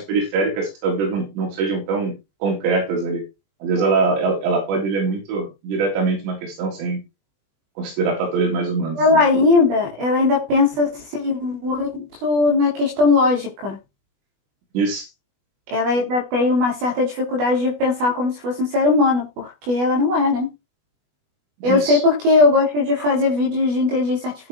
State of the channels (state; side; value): late; left; 20 ms